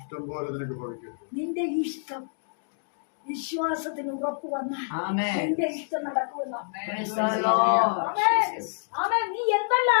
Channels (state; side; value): silent; right; digital silence